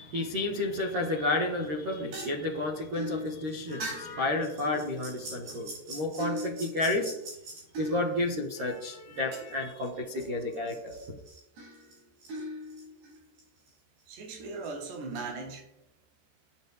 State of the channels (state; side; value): late; left; 13 ms